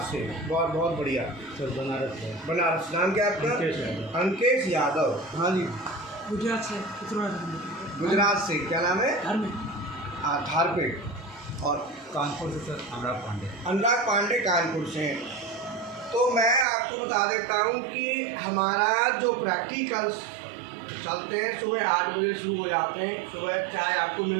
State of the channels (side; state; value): left; drops out; at 16.7 s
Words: से। बहुत बहुत बढ़िया सर बनारस से। बनारस। नाम क्या है आपका? अंकेश यादव। हाँ जी। गुजरात से। गुजरात से। क्या नाम है? धारपेट। और कानपुर से सर अनुराग पांडे। अनुराग पांडे कानपुर से। तो मैं आपको बता देता हूँ कि हमारा जो प्रैक्टिकल्स चलते हैं सुबह 8 बजे शुरू हो जाते हैं। सुबह चाय आपको